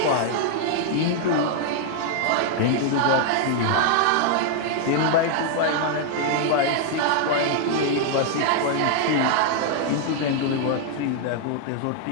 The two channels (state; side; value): different; both; correlation 0.00